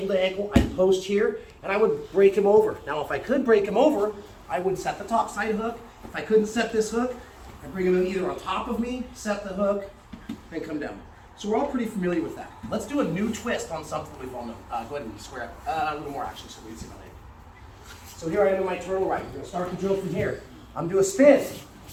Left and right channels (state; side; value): identical; both; correlation 1.00